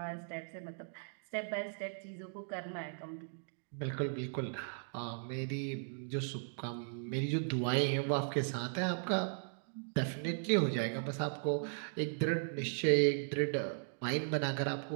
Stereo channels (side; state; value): left; silent; digital silence